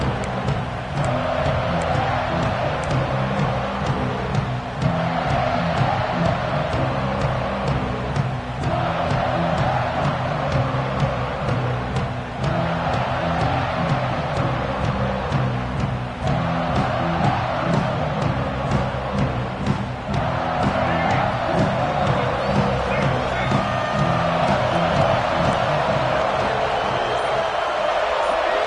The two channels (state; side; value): identical; both; correlation 1.00